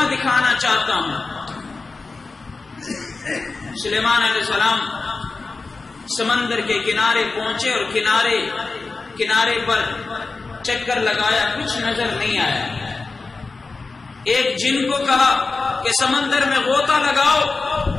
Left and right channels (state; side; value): quieter; right; 3.9 dB